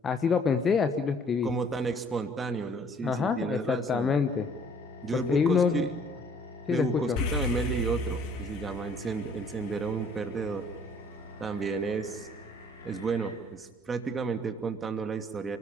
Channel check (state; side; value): normal; both; correlation 0.58